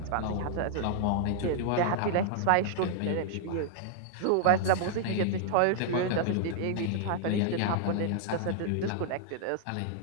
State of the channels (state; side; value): different; both; correlation -0.01